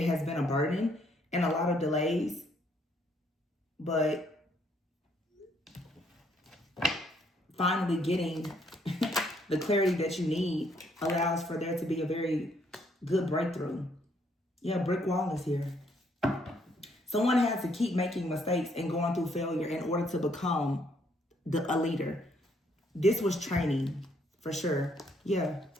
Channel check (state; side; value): normal; both; correlation 0.69